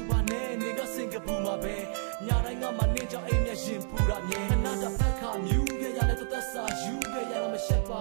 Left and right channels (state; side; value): silent; left; digital silence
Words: ပါနဲ့နေကစင်ကပူမှာပဲညတိုင်းငါမနေကြောင်အိမ်မျက်ရှင်ပူတာမြဲခဏတဖက်ခါမြူးခဲ့ရတဲ့သက်စာယူခဲ့ရမရှက်ပါ